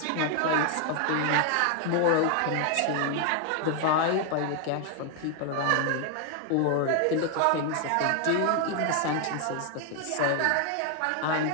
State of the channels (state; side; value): different; both; correlation 0.00